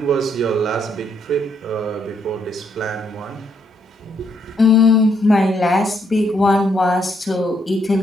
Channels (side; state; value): both; normal; correlation 0.73